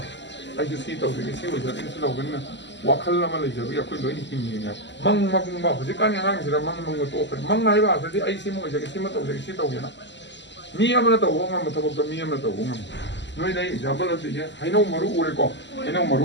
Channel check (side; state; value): right; late; 0.52 ms